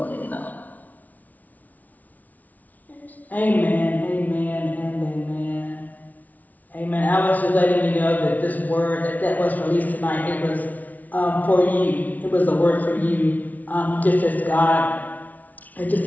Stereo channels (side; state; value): right; late; 0.075 ms